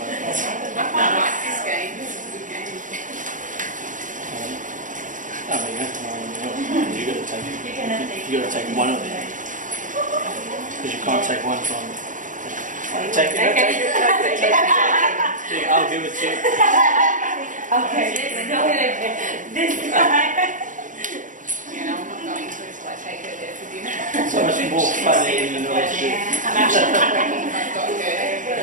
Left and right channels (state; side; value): late; left; 0.38 ms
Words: from there. I quite like this game. This is a good game. Oh, there you go. You got to take. You got to take one of them because you can't take one from. Take it. Take it. Yeah, I'll give it to you. Okay, this time. You know, I'm not going to until I take her there for dinner. So much more fun than you know what to do. I'm actually working. I've got